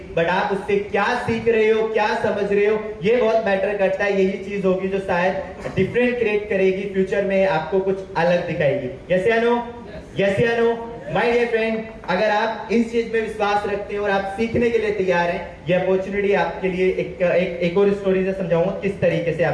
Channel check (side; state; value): both; identical; correlation 1.00